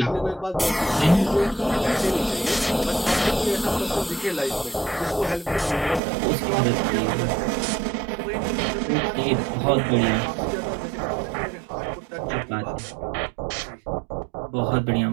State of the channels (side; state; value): left; drops out; at 6.0 s